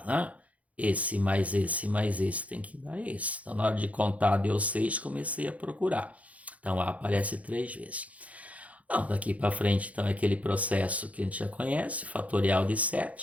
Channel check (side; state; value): left; late; 0.068 ms